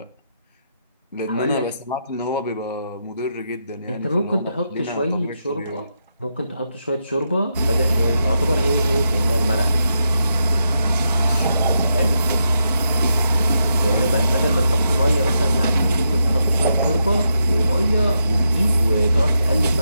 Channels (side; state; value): both; inverted; correlation -0.83